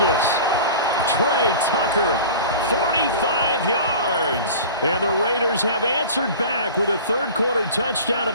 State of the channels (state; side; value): inverted; both; correlation -0.38